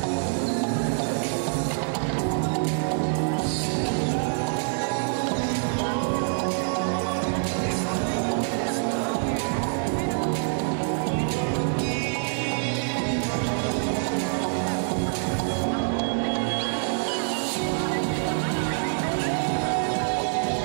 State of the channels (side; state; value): left; silent; digital silence